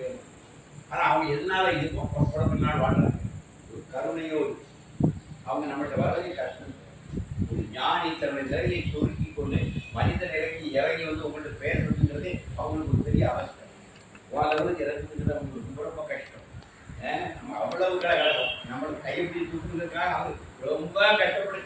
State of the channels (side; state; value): both; identical; correlation 1.00